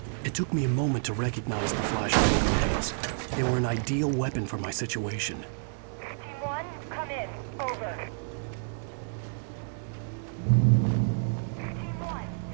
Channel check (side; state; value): left; silent; digital silence